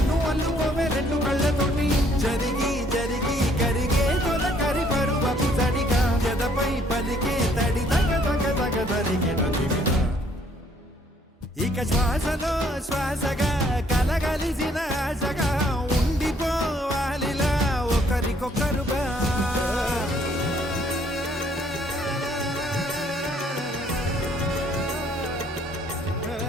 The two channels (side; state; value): both; normal; correlation 0.64